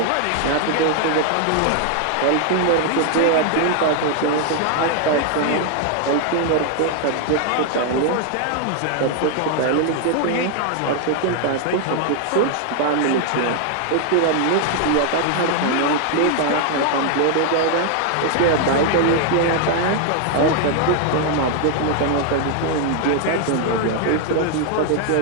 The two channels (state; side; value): different; both; correlation 0.00